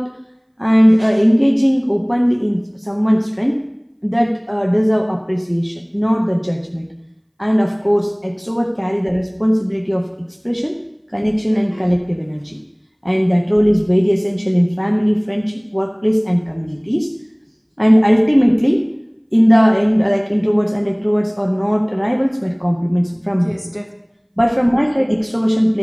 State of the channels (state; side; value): identical; both; correlation 1.00